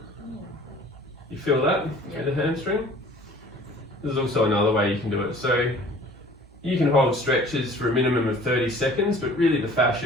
You feel that? Yep. With the hamstring? There's also another way you can do it. So you can hold stretches for a minimum of 30 seconds, but really the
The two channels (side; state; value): both; normal; correlation 0.49